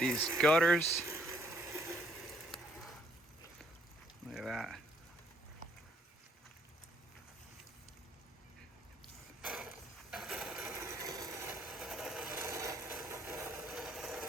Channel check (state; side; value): normal; both; correlation 0.67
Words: gutters. Look at that.